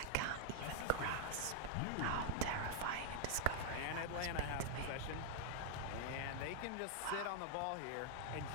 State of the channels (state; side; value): different; both; correlation 0.00